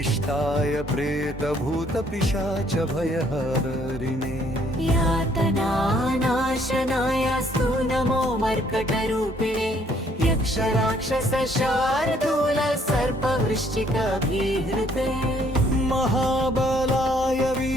प्रेतभूतपिशाच भयहरिणे यातनानाशनायास्तु नमो मर्कटरूपिणे यक्षराक्षसशार्दूल सर्पवृश्चिकभीहृते महाबलाय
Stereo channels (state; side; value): normal; both; correlation 0.65